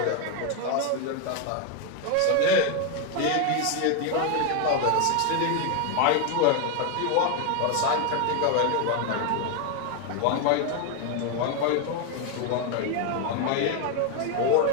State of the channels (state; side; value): different; both; correlation 0.01